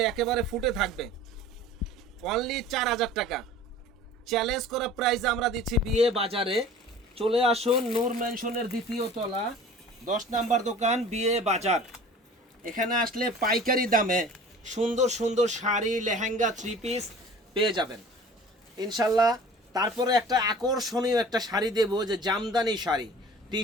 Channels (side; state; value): both; normal; correlation 0.44